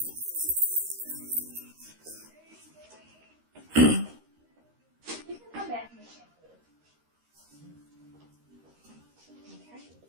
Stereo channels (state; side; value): late; left; 13 ms